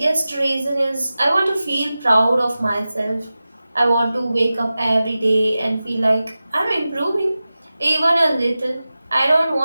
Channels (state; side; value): inverted; both; correlation -0.95